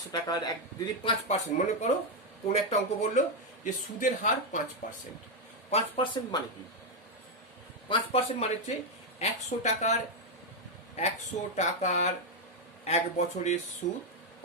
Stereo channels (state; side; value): normal; both; correlation 0.02